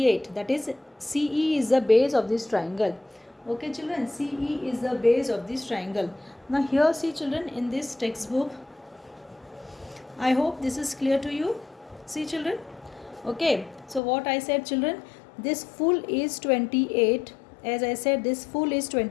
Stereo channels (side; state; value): right; drops out; at 14.0 s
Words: That is CE is the base of this triangle. Okay children, CE is the base of this triangle. Now here see children, in this textbook, I hope this is clear to you. See children. Okay, so what I said children, this full is 28. As I said, this full is